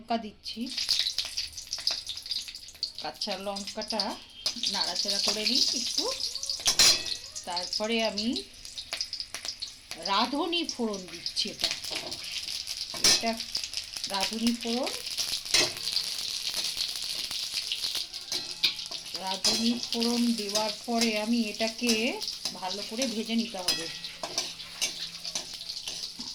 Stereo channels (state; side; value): identical; both; correlation 1.00